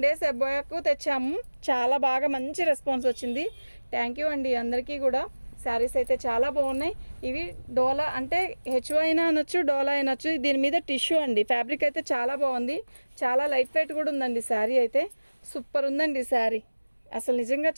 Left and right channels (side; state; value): both; inverted; correlation -1.00